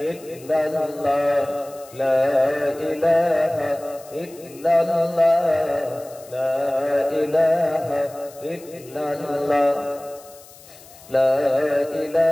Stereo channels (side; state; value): left; noise; hiss, 22 dB below the sound